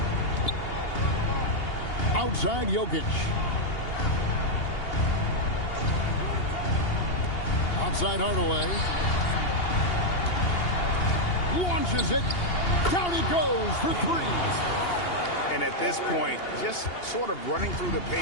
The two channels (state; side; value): late; right; 2.8 ms